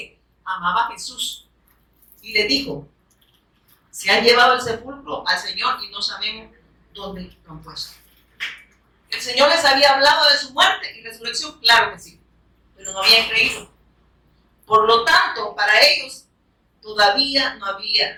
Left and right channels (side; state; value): both; identical; correlation 1.00